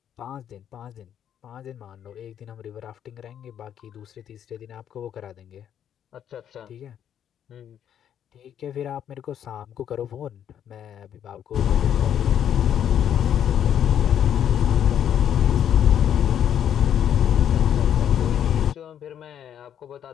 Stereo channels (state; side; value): quieter; right; 9.6 dB